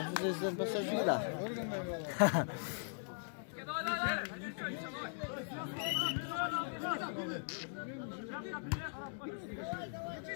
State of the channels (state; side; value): silent; right; digital silence